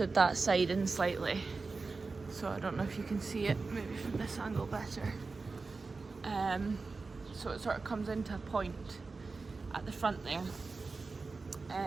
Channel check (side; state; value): left; quieter; 4.1 dB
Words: that side in slightly. So I don't know if you can see it, maybe from this angle better. So it sort of comes into a point at the front there.